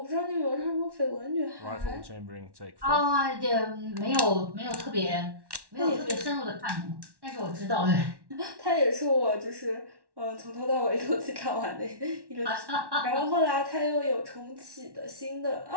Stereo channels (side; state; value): left; late; 1.1 ms